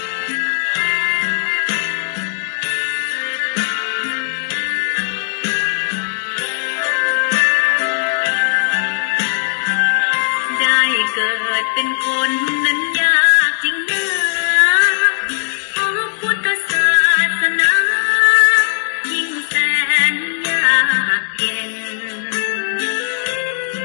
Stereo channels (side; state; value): right; silent; 65 dB below the other